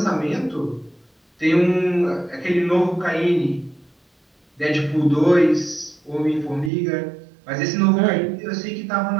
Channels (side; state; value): left; drops out; at 6.7 s